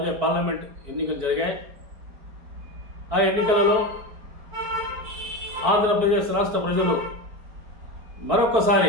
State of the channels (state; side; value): late; left; 4.5 ms